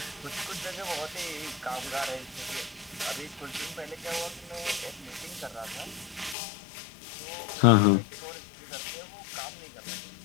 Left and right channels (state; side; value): drops out; right; at 6.4 s